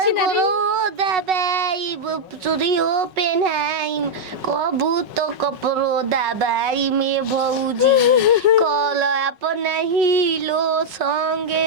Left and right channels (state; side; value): late; left; 5.4 ms